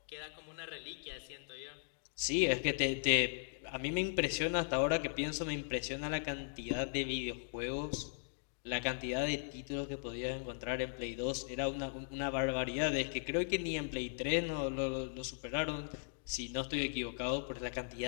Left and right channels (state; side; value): silent; right; digital silence